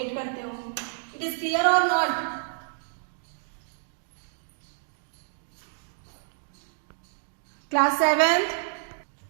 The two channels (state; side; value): silent; left; digital silence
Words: करते हो। इट इज क्लियर और नॉट? क्लास 7th,